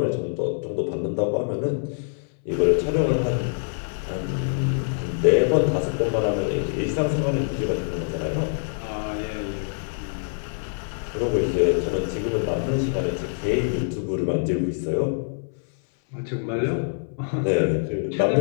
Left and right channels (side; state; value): right; silent; 60 dB below the other